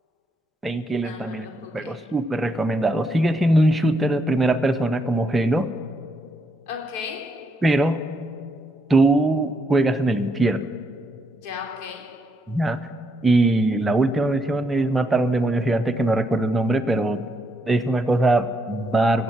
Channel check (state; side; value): normal; both; correlation 0.78